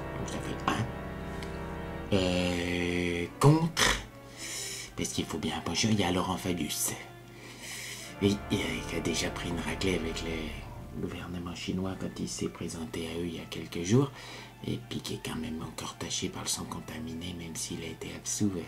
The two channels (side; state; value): both; identical; correlation 1.00